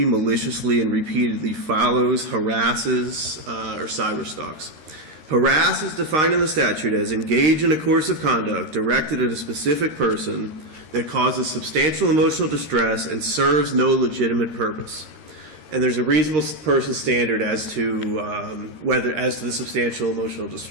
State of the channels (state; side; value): late; left; 13 ms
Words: maliciously, and repeatedly follows, harasses, or cyberstalks. Harass is defined in the statute as engage in a course of conduct directed at a specific person that causes substantial emotional distress and serves no legitimate purpose. And there's a reasonable person standard as to as to the substantial emotional